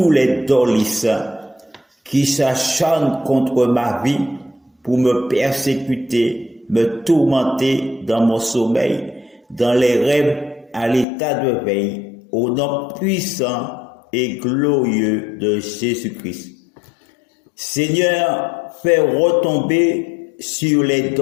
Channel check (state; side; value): drops out; right; at 11.1 s